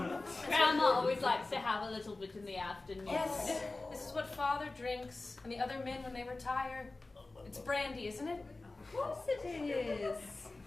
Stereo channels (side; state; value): right; quieter; 3.2 dB